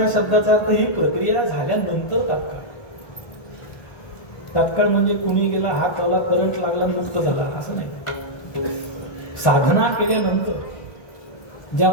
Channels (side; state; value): right; late; 1.7 ms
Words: शब्दाचा अर्थ ही प्रक्रिया झाल्यानंतर तात्काळ. तात्काळ म्हणजे कुणी गेला, हात आला, करंट लागला, मुक्त झाला असं नाही. साधना केल्यानंतर